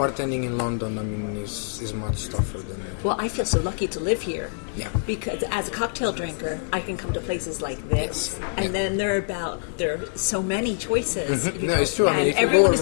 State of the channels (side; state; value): right; silent; 56 dB below the other